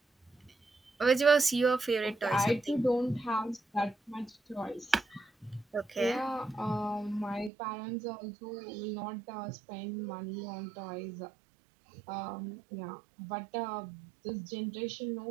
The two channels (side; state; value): left; drops out; at 7.5 s